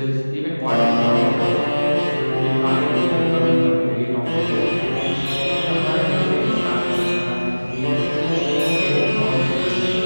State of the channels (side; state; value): both; inverted; correlation -1.00